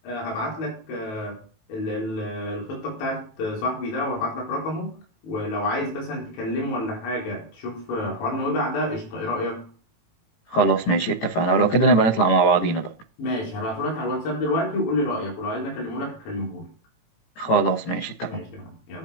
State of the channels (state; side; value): late; right; 18 ms